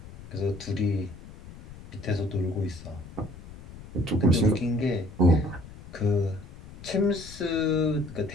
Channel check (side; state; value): left; noise; rumble, 16 dB below the sound